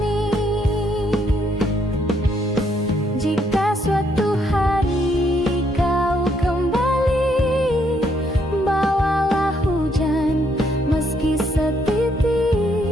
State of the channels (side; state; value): both; normal; correlation 0.73